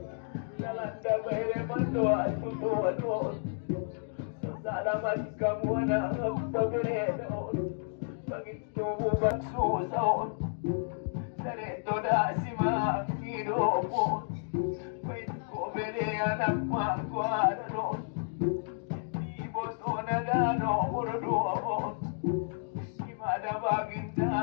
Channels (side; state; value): right; silent; digital silence